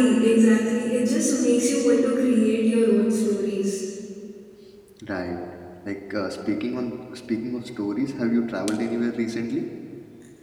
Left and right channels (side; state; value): both; identical; correlation 1.00